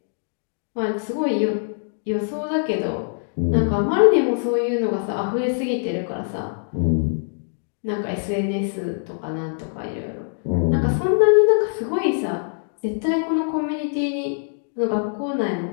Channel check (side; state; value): right; silent; digital silence